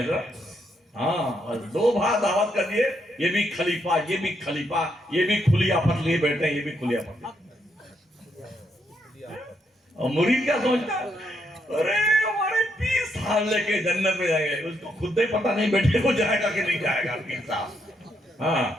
اور 2 بھائی دعوت کر دیے, یہ بھی خلیفہ, یہ بھی خلیفہ, یہ بھی کھلی آفت لیے بیٹھے ہیں, یہ بھی کھلی آفت. اور مرید کیا سوچتا ہے, ارے ہمارے 20 سال لے کے جنت میں جائیں گے. اس کو خود ہی پتا نہیں بیٹھے کو جائے گا کہ نہیں جائے گا 20 سال.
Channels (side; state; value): both; normal; correlation 0.77